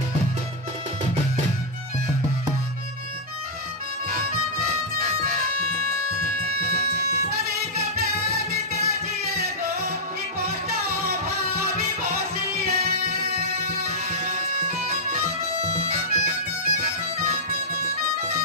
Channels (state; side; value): normal; both; correlation -0.07